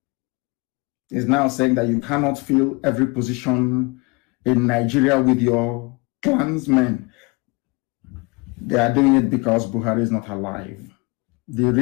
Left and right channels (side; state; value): right; quieter; 27.6 dB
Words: is now saying that you cannot fill every position in Nigeria with your clansmen. They are doing it because Buhari is not alive. The